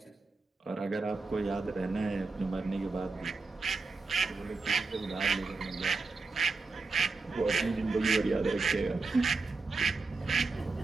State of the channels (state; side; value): quieter; left; 4.0 dB